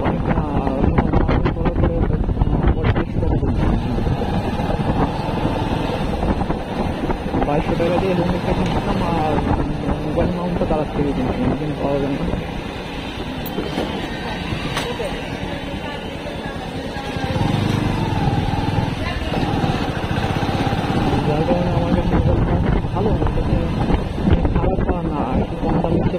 বাইশশো টাকা দিয়ে হেলমেটটা কিনছিলাম আর মোবাইল মাউন্টটা তারা থেকে কিনছিলাম, কিন্তু পাওয়া যায় না। যার কারণে আমার কাছে মোবাইল মাউন্ট ভালো, আমার কাছে খারাপ না, একটু কম দাম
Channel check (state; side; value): identical; both; correlation 1.00